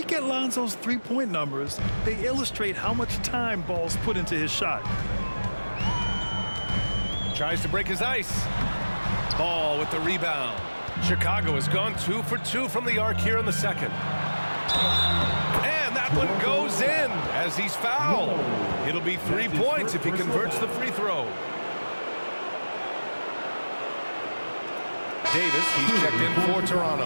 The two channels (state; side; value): inverted; both; correlation -1.00